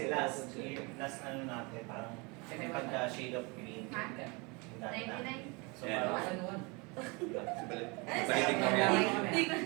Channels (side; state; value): left; quieter; 28.8 dB